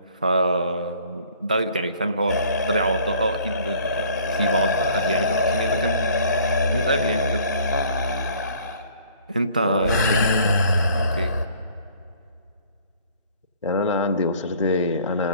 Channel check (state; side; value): inverted; both; correlation -0.55